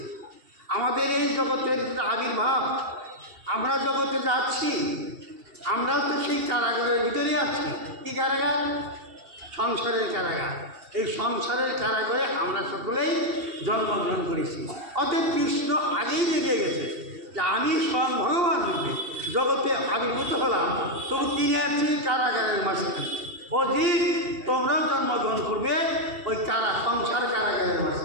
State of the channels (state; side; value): late; left; 2.7 ms